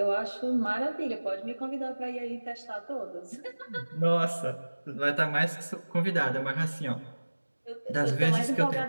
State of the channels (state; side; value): inverted; both; correlation -1.00